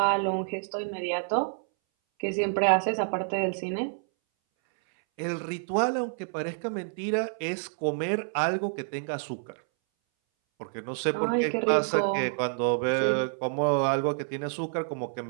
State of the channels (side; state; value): left; silent; 59 dB below the other